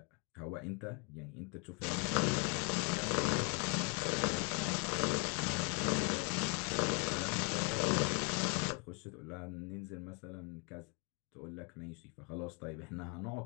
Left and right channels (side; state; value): right; quieter; 33.6 dB